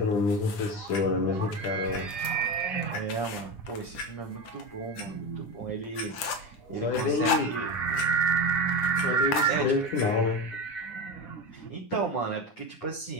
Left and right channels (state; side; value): late; right; 9.9 ms